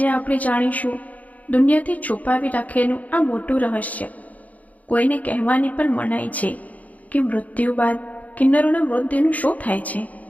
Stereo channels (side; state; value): right; late; 0.074 ms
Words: આપણે જાણીશું દુનિયાથી છુપાવી રાખેલું આ મોટું રહસ્ય. કોઈને કહેવાની પણ મનાઈ છે કે મૃત્યુ બાદ કિન્નરોના મૃતદેહનું શું થાય છે.